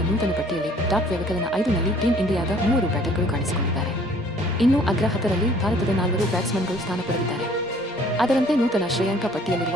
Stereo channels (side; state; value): both; normal; correlation 0.56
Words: ನೂತನ ಪಟ್ಟಿಯಲ್ಲಿ ಟಾಪ್ ವ್ಯವಕಲನ 5ನಲ್ಲಿ ಟೀಂ ಇಂಡಿಯಾದ 3 ಬ್ಯಾಟರ್ಗಳು ಕಾಣಿಸಿಕೊಂಡಿದ್ದಾರೆ. ಇನ್ನು ಅಗ್ರ 10ರಲ್ಲಿ ಭಾರತದ 4 ಬ್ಯಾಟ್ಸ್ಮನ್ಗಳು ಸ್ಥಾನ ಪಡೆದಿದ್ದಾರೆ. ಅದರಂತೆ ನೂತನ ಶ್ರೇಯಾಂಕ